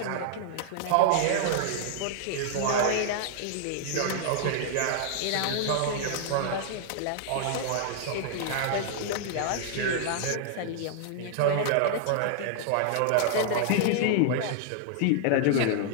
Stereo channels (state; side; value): different; both; correlation -0.01